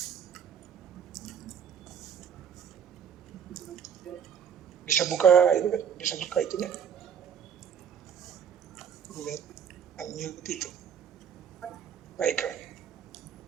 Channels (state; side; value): quieter; left; 8.0 dB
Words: Bisa buka itunya. Unmute itu. Pak Ikram.